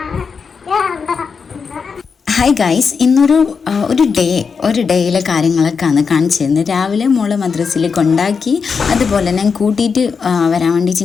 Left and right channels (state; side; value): quieter; right; 5.6 dB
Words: hi guys, ഇന്നൊരു ഡേയിലെ കാര്യങ്ങളൊക്കെയാണ് കാണിച്ചു തരുന്നത്. രാവിലെ മോളെ മദ്രസയിൽ കൊണ്ടാക്കി, അതുപോലെ ഞാൻ കൂട്ടിയിട്ട് വരാൻ